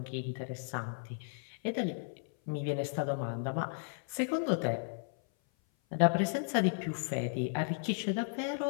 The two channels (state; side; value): silent; right; 55 dB below the other